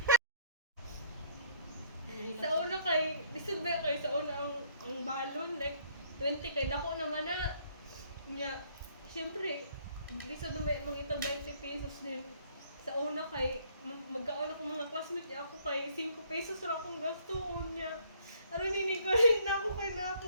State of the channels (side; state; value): both; inverted; correlation -0.62